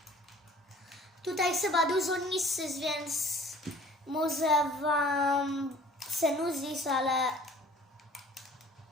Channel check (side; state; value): both; normal; correlation 0.51